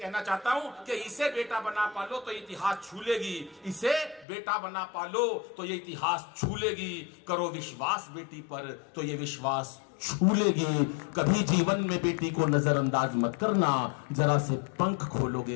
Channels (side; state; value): right; drops out; at 4.2 s